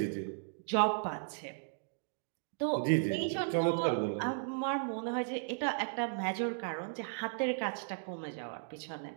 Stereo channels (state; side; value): silent; left; digital silence